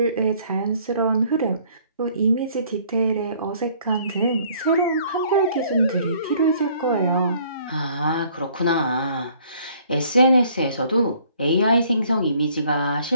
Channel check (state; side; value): inverted; both; correlation -0.60